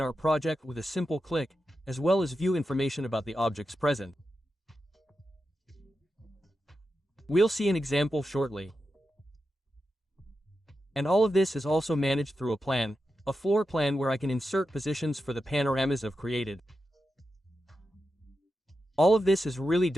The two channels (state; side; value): normal; both; correlation 0.89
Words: our project with a simple click, as well as view information about the objects present. We'll see an example shortly. And all of this is also managed through a floor plan where I can insert positions for the panoramas I've created. All of this is really